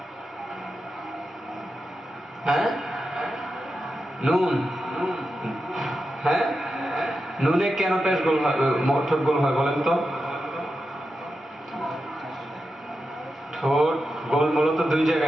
হ্যাঁ নুন হ্যাঁ নুনে কেন পেশ গোল হয় ঠোঁট গোল হয় বলেন তো ঠোঁট গোল মূলত দুই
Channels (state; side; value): normal; both; correlation 0.89